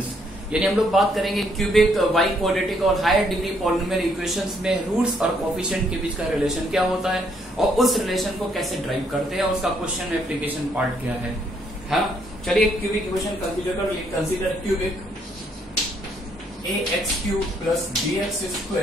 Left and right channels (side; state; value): both; normal; correlation 0.70